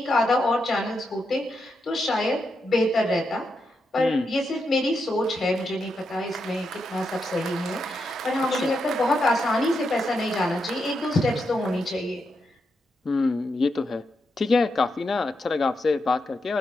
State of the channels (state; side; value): normal; both; correlation 0.84